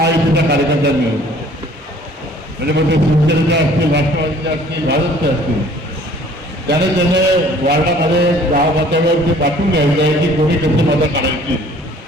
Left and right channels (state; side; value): normal; both; correlation 0.53